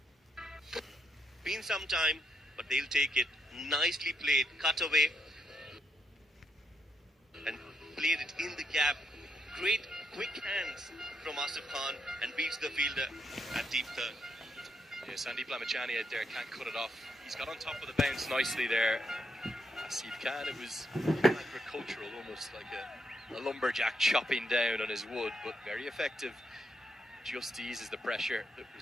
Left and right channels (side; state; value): both; normal; correlation 0.79